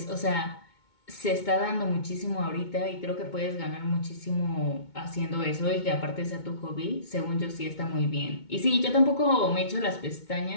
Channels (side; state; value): right; late; 2.2 ms